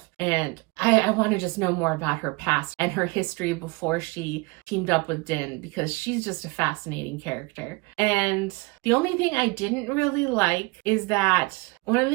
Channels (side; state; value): left; quieter; 25.8 dB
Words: And I want to just know more about her past and her history before she teamed up with Din, because she's just a fascinating character. And the only thing I didn't really like is that one of the